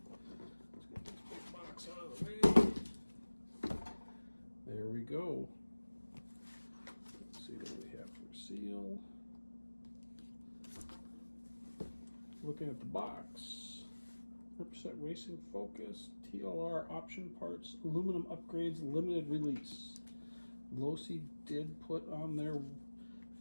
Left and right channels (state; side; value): inverted; both; correlation -1.00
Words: Let's get this big box out of the way. There we go. Let's see what we have for seal. Looking at the box. 100% racing focus, TLR option parts, aluminum upgrades, limited release. Losi did put on their